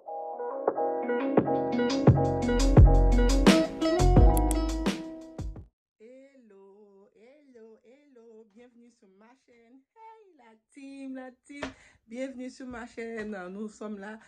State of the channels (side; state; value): both; identical; correlation 1.00